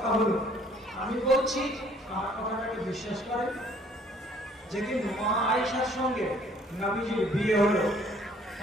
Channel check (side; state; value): both; normal; correlation 0.59